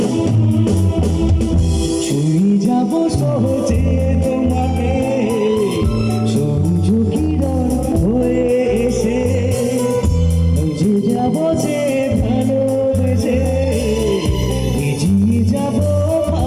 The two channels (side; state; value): both; identical; correlation 1.00